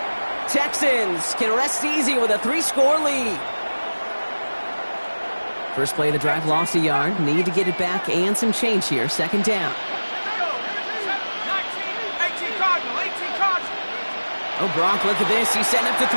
Texans can rest easy with a 3-score lead. First play of the drive lost a yard. Need to get it back and some change here. Second down. 18 Cardinal, 18 Cardinal. Oh, Gronk, look at this. He's setting up to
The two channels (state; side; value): inverted; both; correlation -1.00